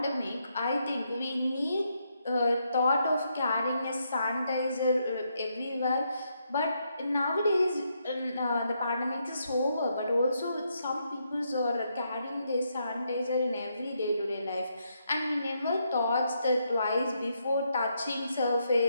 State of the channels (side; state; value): both; inverted; correlation -0.78